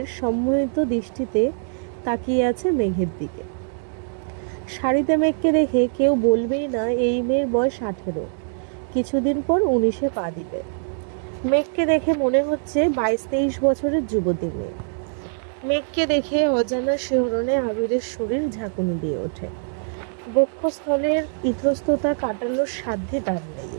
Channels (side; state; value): left; silent; digital silence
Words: সম্মোহিত দৃষ্টিতে তাকিয়ে আছে মেঘের দিকে। শাড়িতে মেঘকে দেখে কেউ বলবেই না এই মেয়ের বয়স 18, কিছুদিন পর 19-এ পা দিবে। মেঘকে দেখে মনে হচ্ছে 22-23 বছরের যুবতী মেয়ে। মেঘকে দেখে অজানা শিহরণে আবিরের শরীর ঝাঁকুনি দিয়ে ওঠে। বক্ষস্থলের ইতস্ততা কাটানোর সাধ্যে তার নেই।